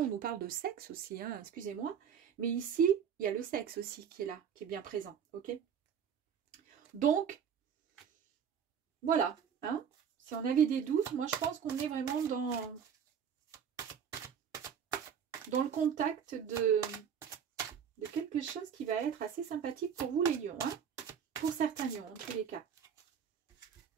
on nous parle de sexe aussi, hein, excusez-moi. Mais ici, il y a le sexe aussi qui est là, qui est bien présent, ok? Donc, voilà, hein. Si on avait des doutes, moi, je pense qu'on est vraiment dans le contact de quelque chose qui va être assez sympathique pour vous, les lions, hein. Pour certains lions, en tous les cas.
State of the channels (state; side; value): quieter; left; 7.7 dB